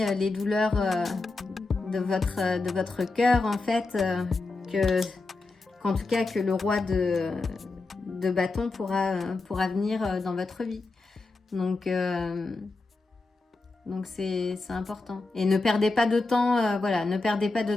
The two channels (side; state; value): right; quieter; 3.5 dB